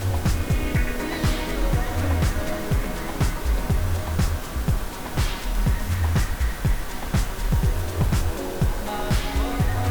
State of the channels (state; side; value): identical; both; correlation 1.00